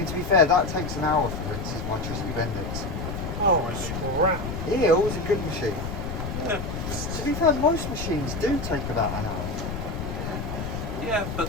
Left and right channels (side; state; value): left; noise; rumble, 5 dB below the sound